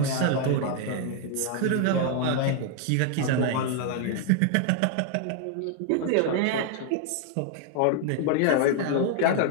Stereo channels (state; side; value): different; both; correlation 0.00